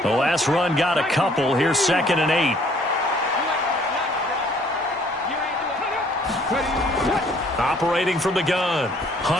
The last run got a couple. Here's 2nd and 8. Operating from the gun,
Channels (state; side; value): normal; both; correlation 0.60